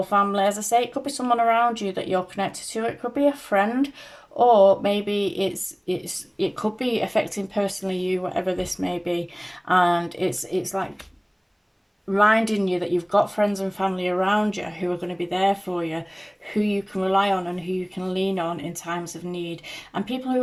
family. As I say, it could be someone around you that you're connected to. It could be a friend, or maybe it could be affecting personally you, whatever this may be. And it's like reminding you that you've got friends and family around you who are going to be there for you, who you can rely on and who you can lean on in times of need, and people who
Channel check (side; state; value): both; identical; correlation 1.00